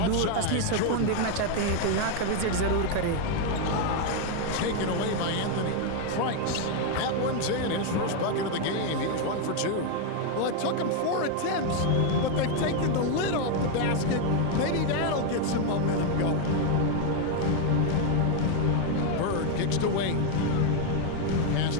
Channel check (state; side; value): different; both; correlation 0.01